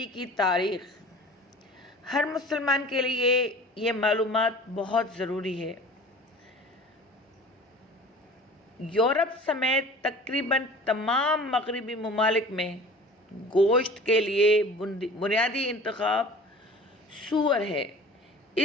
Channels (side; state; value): both; normal; correlation 0.42